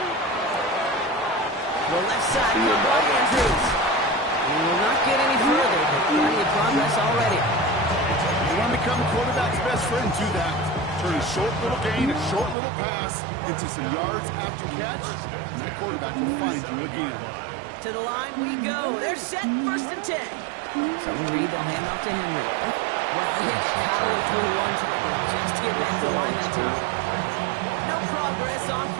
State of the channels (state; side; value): drops out; left; at 12.6 s